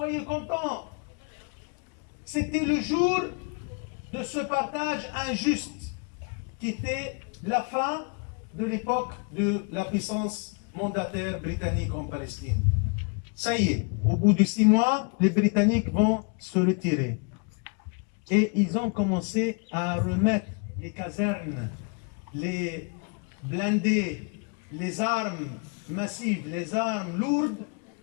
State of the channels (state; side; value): quieter; right; 36.0 dB